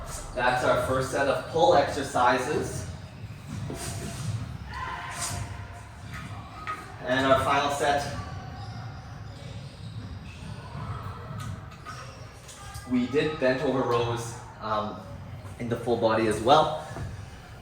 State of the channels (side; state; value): both; identical; correlation 1.00